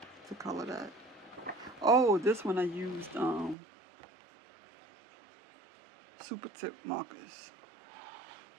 to color that. Oh, this one I used super tip markers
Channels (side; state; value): left; drops out; at 3.6 s